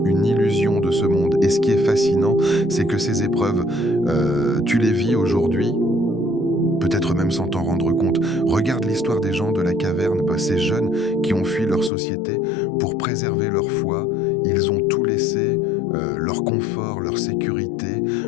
une illusion de ce monde. Et ce qui est fascinant, c'est que ces épreuves, tu les vis aujourd'hui, peut-être même sans t'en rendre compte. Regarde l'histoire des gens de la caverne, ces jeunes qui ont fui leur société pour préserver leur foi. Ils ont tout laissé, leur confort, leur sécurité,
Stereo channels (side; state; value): right; drops out; at 11.9 s